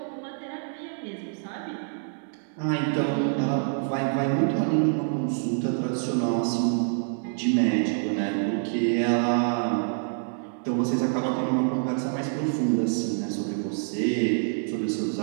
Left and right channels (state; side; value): silent; left; 60 dB below the other